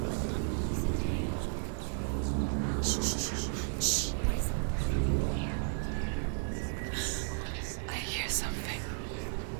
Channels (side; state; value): left; silent; 55 dB below the other